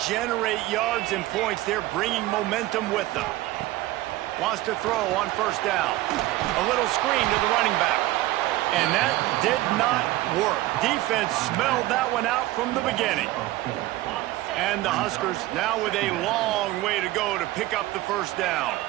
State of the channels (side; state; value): left; quieter; 17.1 dB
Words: generate yards and points, they're bringing momentum with them. Wants to throw on 1st down. A little screen to the running back. And that did not work. Defense smelled that one out from the beginning. And the Huskers now with a long way to go to pick up the 1st down.